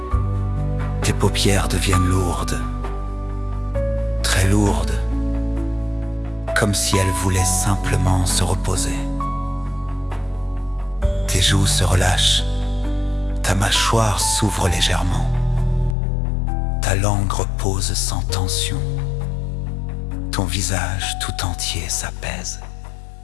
tes paupières deviennent lourdes, très lourdes, comme si elles voulaient simplement se reposer. Tes joues se relâchent, ta mâchoire s'ouvre légèrement, ta langue repose sans tension, ton visage tout entier s'apaise.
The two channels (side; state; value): right; drops out; at 16.0 s